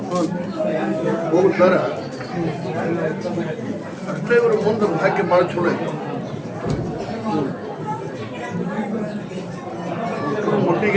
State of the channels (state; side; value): identical; both; correlation 1.00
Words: ಹೋಗ್ತಾರ ಅಷ್ಟೇ ಇವರು ಮುಂದೆ ಭಾಗ್ಯ ಭಾಳ ಚಲೋ ಐತೆ.